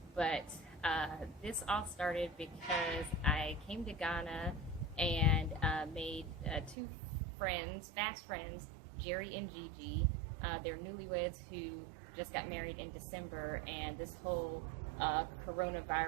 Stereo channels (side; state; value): left; drops out; at 6.8 s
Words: But this all started because I came to Ghana and made two friends, fast friends, Jerry and Gigi. They're newlyweds who just got married in December, and this whole